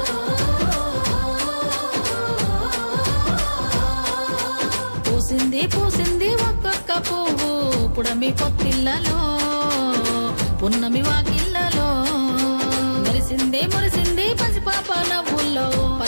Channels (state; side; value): inverted; both; correlation -1.00